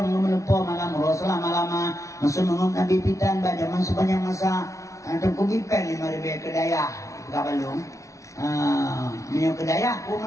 melupo malam rasul lama-lama masuk mengum Nabi pitan bajaman sepanjang masa hantam kugipen 5.000 kedaya kabalung minyak kedaya ku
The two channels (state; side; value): late; right; 0.15 ms